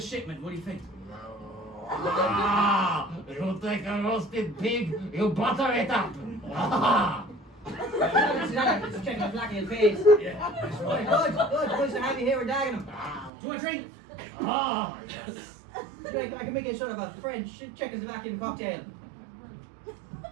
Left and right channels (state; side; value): drops out; left; at 13.3 s